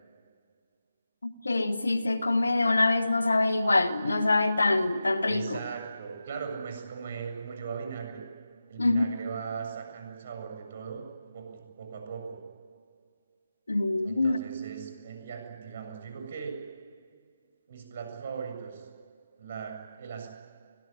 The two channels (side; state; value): both; inverted; correlation -0.92